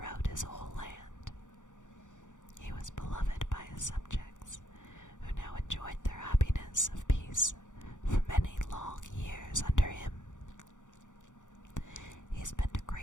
his whole land. He was beloved by his subjects, who now enjoyed their happiness of peace for many long years under him. He spent a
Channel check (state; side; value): late; right; 0.86 ms